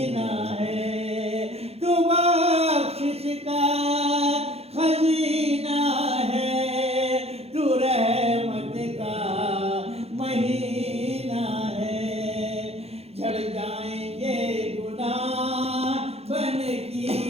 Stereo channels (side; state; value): left; late; 0.29 ms